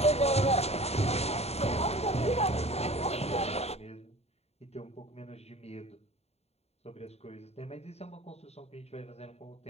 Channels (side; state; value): right; late; 0.30 ms